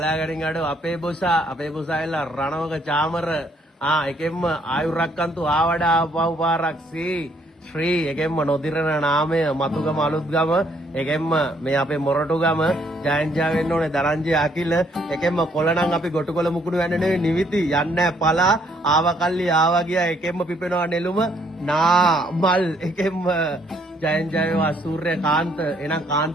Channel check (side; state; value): both; normal; correlation 0.68